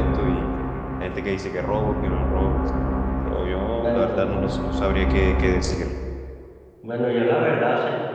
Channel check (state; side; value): identical; both; correlation 1.00